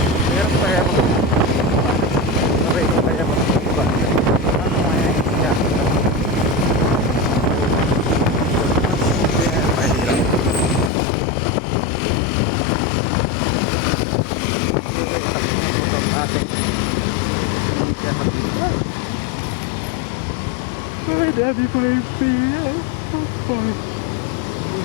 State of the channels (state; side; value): drops out; right; at 10.9 s